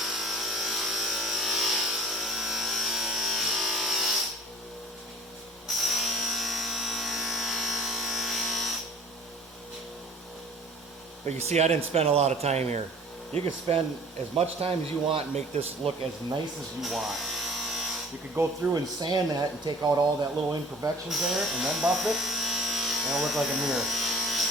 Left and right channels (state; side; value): normal; both; correlation 0.48